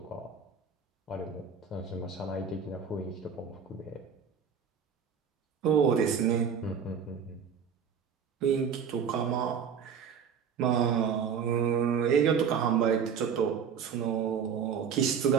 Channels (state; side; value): quieter; left; 6.9 dB